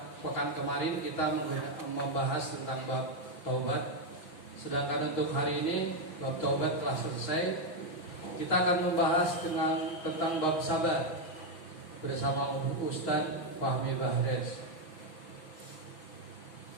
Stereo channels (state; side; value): late; right; 6.0 ms